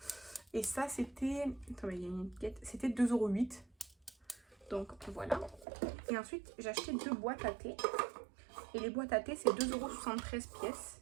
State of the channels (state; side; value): drops out; left; at 5.7 s